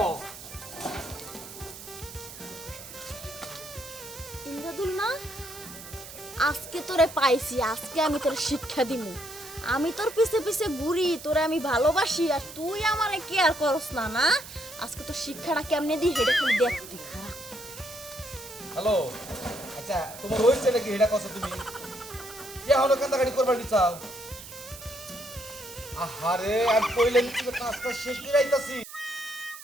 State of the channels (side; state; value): right; noise; hiss, 14 dB below the sound